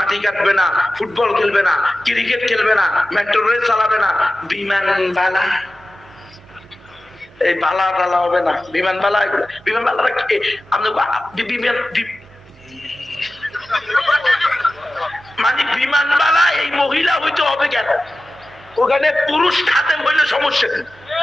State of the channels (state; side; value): normal; both; correlation 0.94